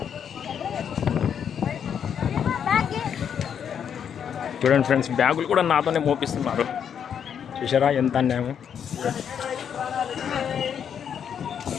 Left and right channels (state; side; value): quieter; right; 8.1 dB